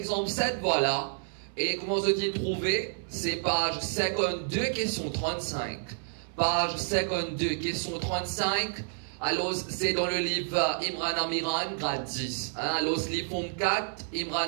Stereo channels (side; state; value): left; silent; 58 dB below the other